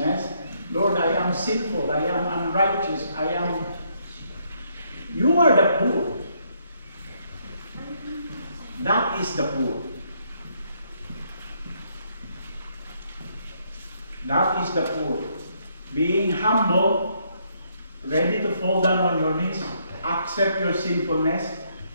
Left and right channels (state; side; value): inverted; both; correlation -0.72